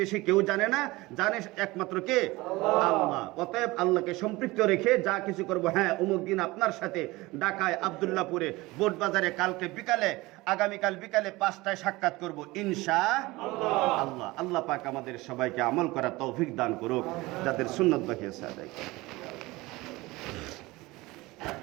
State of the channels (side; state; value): left; quieter; 20.9 dB